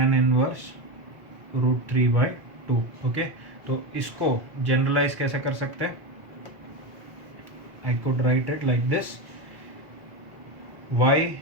inverse root 3/2. Okay, तो इसको जनरलाइज कैसे कर सकते हैं, I could write it like this, y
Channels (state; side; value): late; left; 1.6 ms